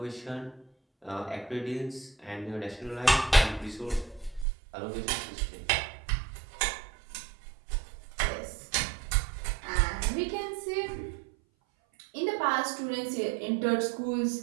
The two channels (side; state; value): left; drops out; at 4.5 s